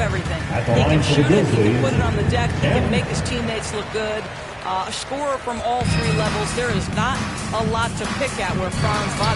everything. He can shoot it, he can put it on the deck, he can make his teammates look good. A scorer from all 3 levels. There is not a lot to pick at where Franz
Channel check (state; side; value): identical; both; correlation 1.00